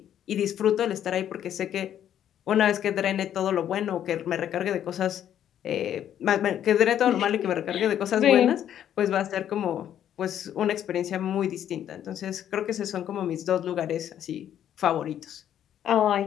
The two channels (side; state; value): right; quieter; 10.3 dB